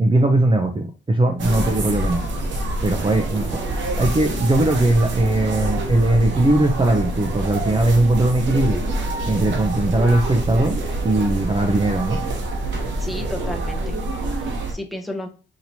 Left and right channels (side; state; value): both; normal; correlation 0.80